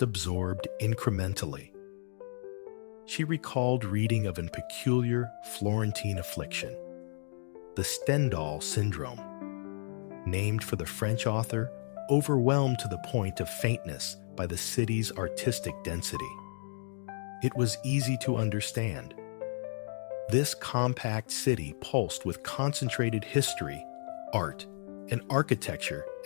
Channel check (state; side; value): silent; right; digital silence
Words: incrementally. She recalled reading of a peculiar Florentine affliction, the Stendhal syndrome, named for the French author, overwhelmed to the point of faintness by the city's artistic density. It was easy to understand. This compact city pulsed with concentrated history, art, and architecture